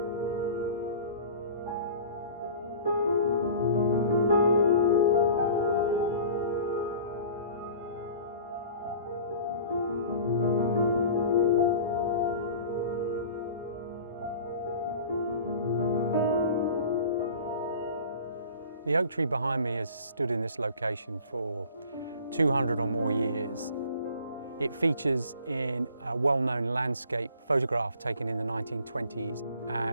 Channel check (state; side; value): inverted; both; correlation -0.44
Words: The oak tree behind me has stood in this location for 200 or more years. It features in a well-known landscape photograph taken in the 1920s,